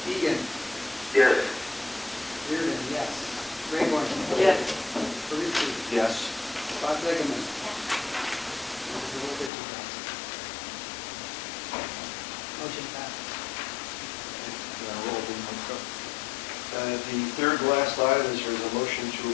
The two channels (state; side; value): drops out; right; at 9.5 s